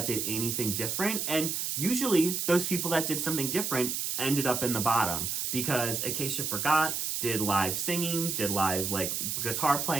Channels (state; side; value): noise; right; hiss, 1 dB below the sound